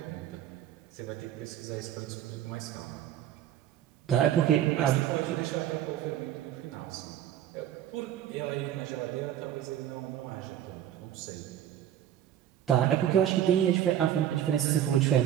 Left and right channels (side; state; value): left; quieter; 11.0 dB